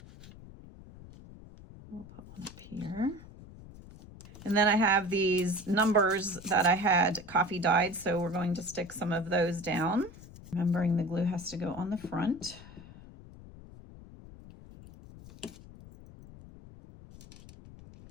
We'll put one up here. And then I have these numbers that I had coffee dyed, so we're going to stick some of those down. Remembering the glue has to go on the front.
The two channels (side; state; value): left; noise; rumble, 18 dB below the sound